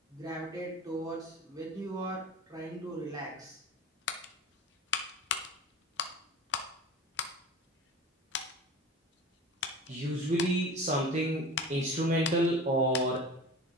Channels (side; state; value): both; normal; correlation 0.35